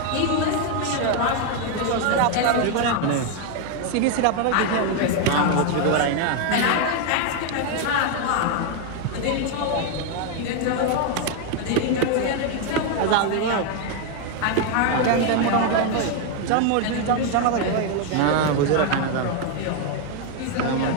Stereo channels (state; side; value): different; both; correlation 0.01